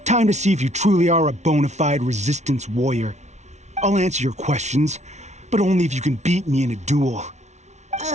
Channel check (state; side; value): late; left; 0.33 ms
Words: Time to see if you truly are a bona fide Resistance warrior. I'll answer your questions, but only if you can beat me in a duel.